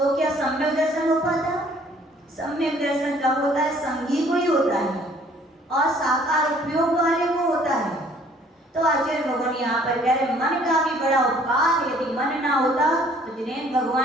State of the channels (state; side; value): normal; both; correlation 0.58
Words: क्या सम्यक दर्शन हो पाता? सम्यक दर्शन कब होता है? संगी को ही होता है और साकार उपयोग वाले को होता है। तो आचार्य भगवान यहाँ पर कह रहे मन का भी बड़ा उपकार। यदि मन ना होता तो जिनेंद्र